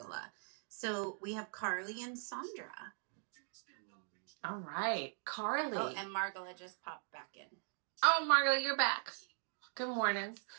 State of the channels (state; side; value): silent; left; 51 dB below the other